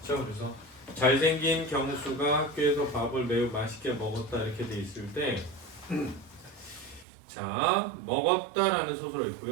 그렇죠? 그래서 잘생긴 경수가 학교에서 밥을 매우 맛있게 먹었다 이렇게 돼 있을 때 자, 먹었다라는 서술어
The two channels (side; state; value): left; drops out; at 7.1 s